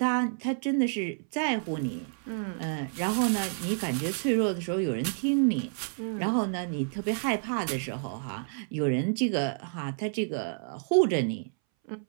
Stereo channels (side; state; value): left; silent; 58 dB below the other